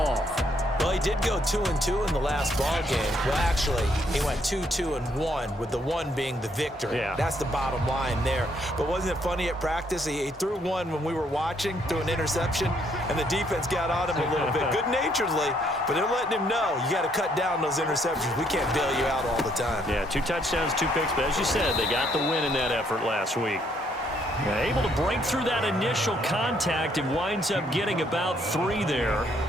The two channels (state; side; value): normal; both; correlation 0.70